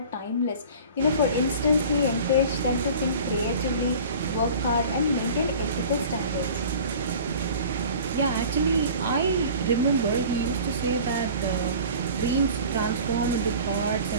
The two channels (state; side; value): inverted; both; correlation -0.42